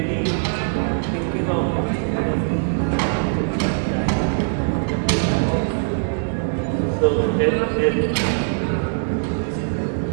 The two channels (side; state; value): left; silent; digital silence